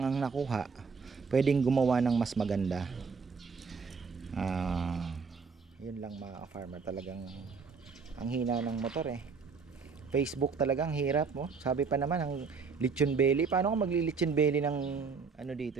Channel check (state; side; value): quieter; left; 5.2 dB